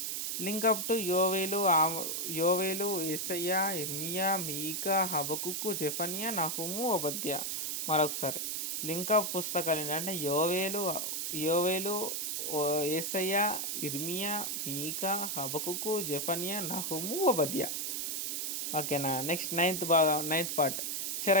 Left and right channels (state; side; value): noise; right; hiss, 1 dB below the sound